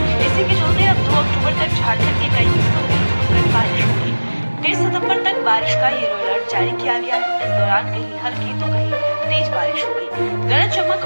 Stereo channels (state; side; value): inverted; both; correlation -1.00